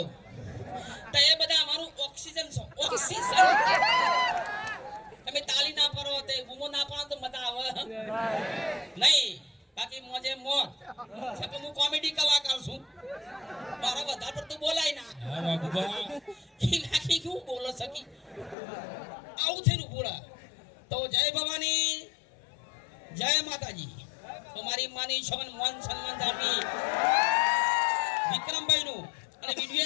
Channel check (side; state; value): right; drops out; at 18.6 s